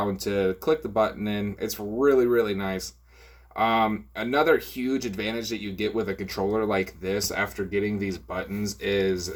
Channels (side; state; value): both; identical; correlation 1.00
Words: to click the button in. It's really nice. Another huge advantage that you get with a controller like this after getting these buttons is